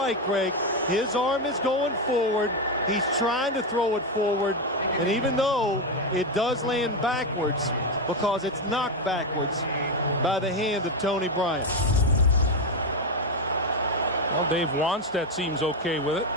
Greg, his arm is going forward. He's trying to throw it forward. And even though it does land backwards, because it's knocked backwards by the hand of Tony Bryant. Well, Dave Wannstedt seems okay with it.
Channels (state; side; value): normal; both; correlation 0.09